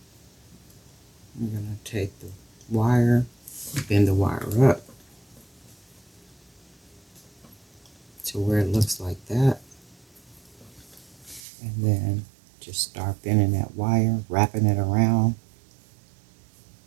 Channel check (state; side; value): drops out; left; at 11.4 s